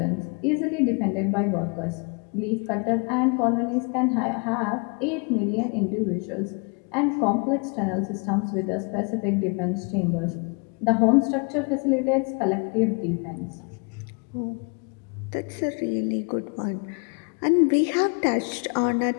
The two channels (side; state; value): right; quieter; 35.0 dB